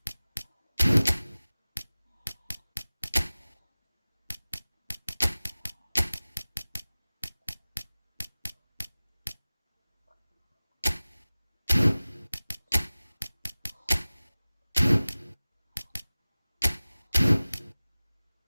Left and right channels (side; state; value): both; inverted; correlation -0.98